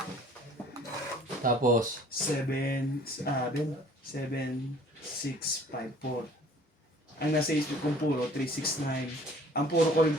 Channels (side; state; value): both; normal; correlation 0.52